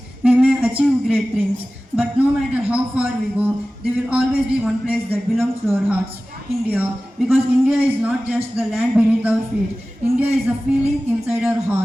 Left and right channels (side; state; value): both; normal; correlation 0.97